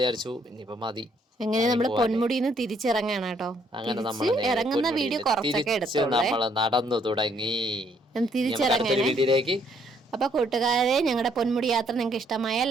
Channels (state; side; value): normal; both; correlation 0.68